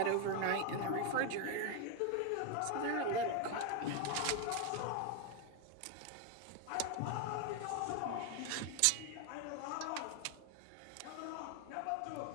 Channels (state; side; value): different; both; correlation 0.01